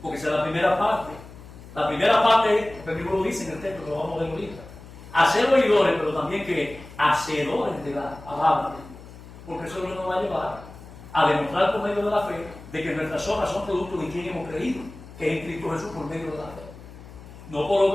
porque esa es la primera parte. La primera parte, el libro lo dice en el texto, lo vamos a ver ahorita. A ser oidores, pero también que hacedores de la palabra, porque eso es lo que nos va a llevar a demostrar por medio de la fe de que nuestras obras son producto de quien hemos creído, que es en Cristo Jesús por medio de la fe. No por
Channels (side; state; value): left; noise; hum, 17 dB below the sound